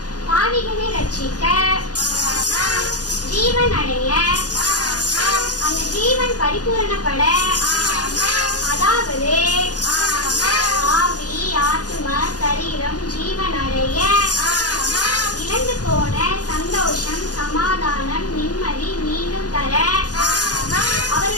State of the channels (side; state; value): right; late; 0.68 ms